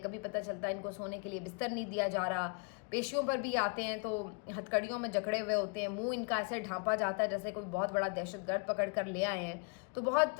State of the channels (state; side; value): quieter; right; 36.7 dB